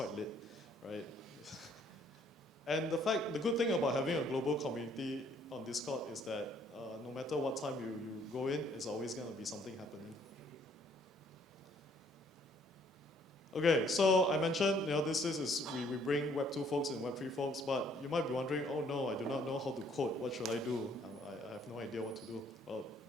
lit, right? And the good thing about having a global community on Discord is that no matter what time you go in, there's always going to be something happening. Okay, so I mentioned, we bring Web 2 folks and Web 3 folks, but you might be wondering, oh no, I do not know how to code. What should I do? I have no idea what to do. Well,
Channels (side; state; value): both; normal; correlation 0.63